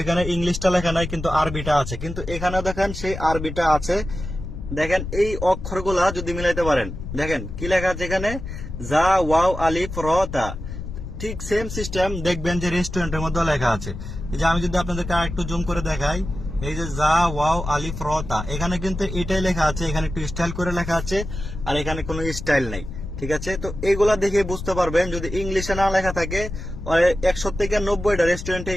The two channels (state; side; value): noise; left; rumble, 8 dB below the sound